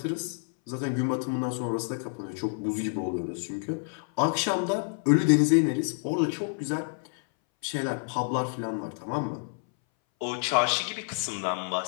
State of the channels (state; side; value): silent; right; 59 dB below the other